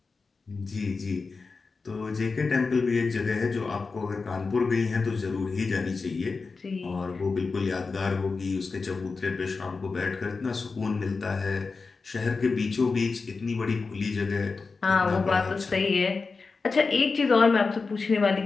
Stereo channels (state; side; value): quieter; right; 4.4 dB